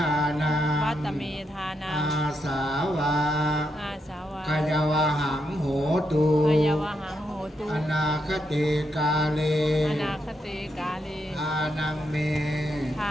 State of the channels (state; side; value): normal; both; correlation 0.81